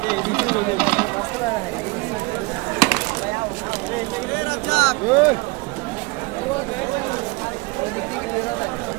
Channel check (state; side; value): quieter; left; 25.6 dB